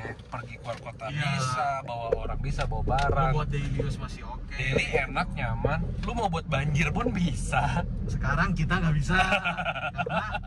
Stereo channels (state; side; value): identical; both; correlation 1.00